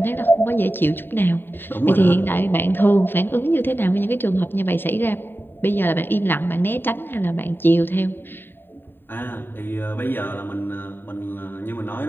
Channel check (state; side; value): late; right; 0.096 ms